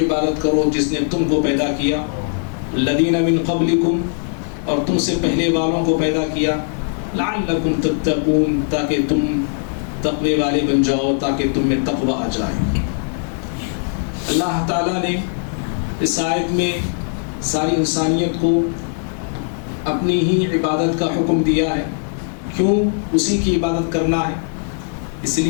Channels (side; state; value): right; silent; 63 dB below the other